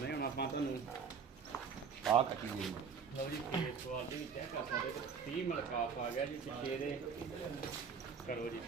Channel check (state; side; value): quieter; left; 6.2 dB